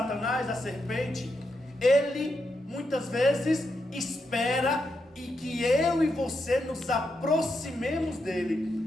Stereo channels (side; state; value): both; normal; correlation 0.83